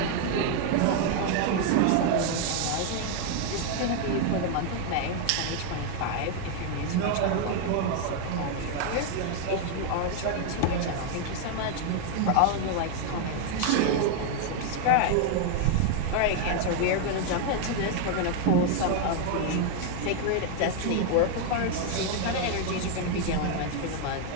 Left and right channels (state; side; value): different; both; correlation 0.00